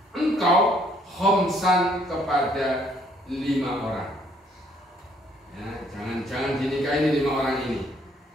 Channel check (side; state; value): both; normal; correlation 0.65